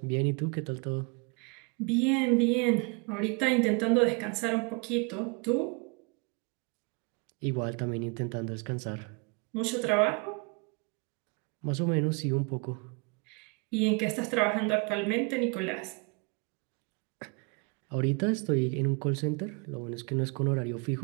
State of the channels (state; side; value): quieter; left; 32.1 dB